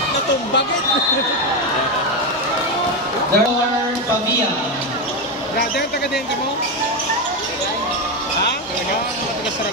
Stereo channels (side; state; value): both; normal; correlation 0.11